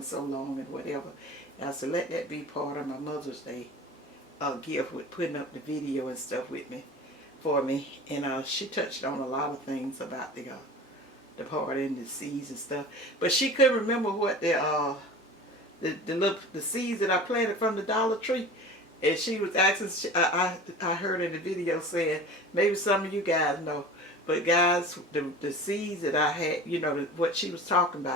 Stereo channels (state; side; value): normal; both; correlation 0.37